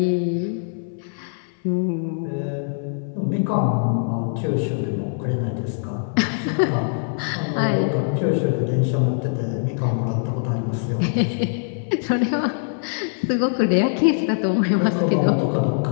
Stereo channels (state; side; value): silent; right; 64 dB below the other